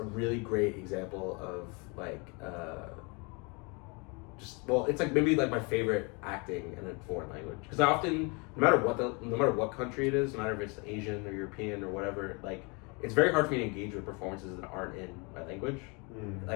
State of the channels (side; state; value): right; quieter; 30.8 dB